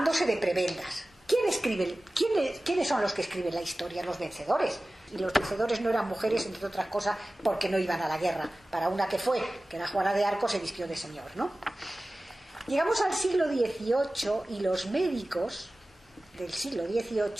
de prebendas. ¿Quiénes son los que escriben la historia? Los vencedores. Y los vencedores no eran mujeres, entre otras cosas, porque no iban a la guerra. Para una que era Juana de Arco, se vistió de señor, ¿no? Llegamos al siglo XVIII y los médicos del siglo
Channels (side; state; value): both; normal; correlation 0.97